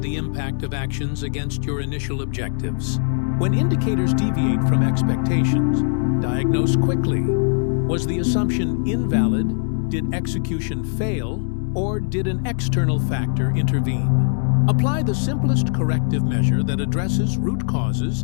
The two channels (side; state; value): right; silent; digital silence